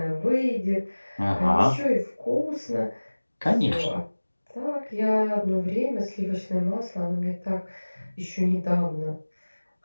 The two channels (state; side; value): inverted; both; correlation -1.00